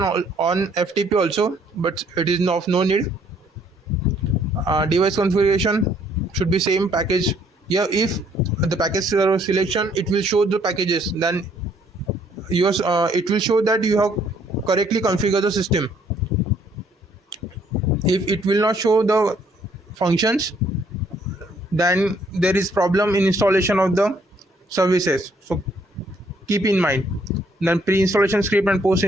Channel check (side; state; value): both; normal; correlation 0.65